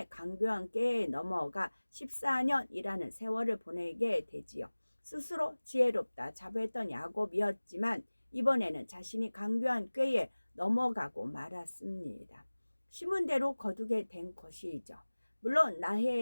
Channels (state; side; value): inverted; both; correlation -1.00